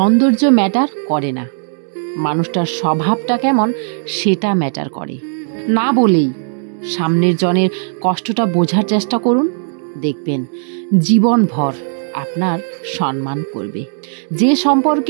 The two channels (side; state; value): left; silent; digital silence